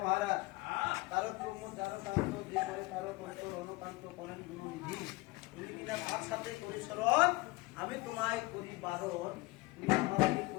মহারাজ তারক ব্রহ্ম যারো কান্ত, যে করে তারো তন্ত্র অনুকান্ত করেন গুণনিধি। তুমি কিনা তার সাথে করি স্মরণ, আমি তোমায় করি বারণ, তুমি আমাকে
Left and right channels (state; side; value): quieter; right; 22.4 dB